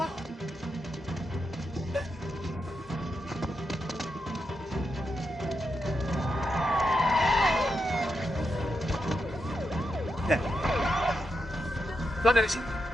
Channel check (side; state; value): both; normal; correlation 0.85